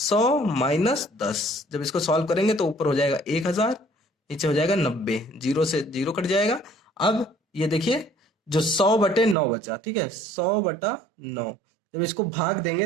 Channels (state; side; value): drops out; left; at 9.3 s